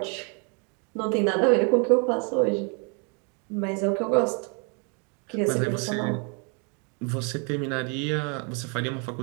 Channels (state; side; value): quieter; left; 36.5 dB